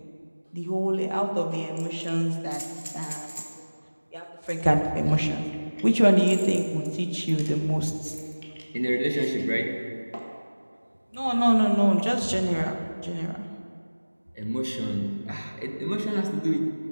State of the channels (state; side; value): inverted; both; correlation -1.00